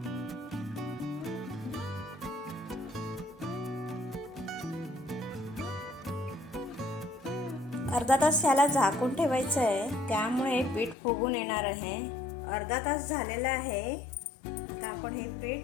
अर्धा तास याला झाकून ठेवायचं आहे. त्यामुळे पीठ फुगून येणार आहे. अर्धा तास झालेला आहे. आता आपण हे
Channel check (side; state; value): right; drops out; at 11.0 s